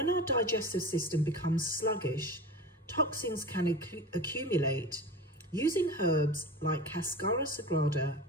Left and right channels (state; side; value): normal; both; correlation 0.32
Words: our digestive system becomes sluggish, toxins can accumulate. Using herbs like Cascara Sagrada